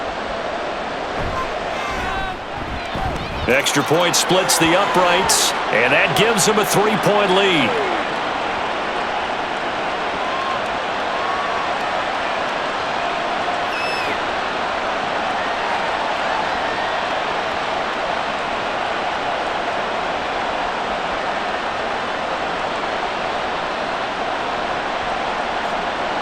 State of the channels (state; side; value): identical; both; correlation 1.00